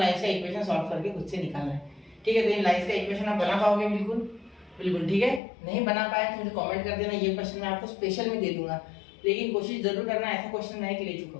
का इक्वेशन सॉल्व करके खुद से निकालना है, ठीक है। तो इन लाइंस का इक्वेशन आप बना पाओगे बिल्कुल बिल्कुल, ठीक है। नहीं बना पाए तो मुझे कमेंट कर देना, ये क्वेश्चन मैं आपको स्पेशल में दे दूंगा, लेकिन कोशिश जरूर करना ऐसा क्वेश्चन नहीं कि ले चुका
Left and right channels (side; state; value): right; drops out; at 5.4 s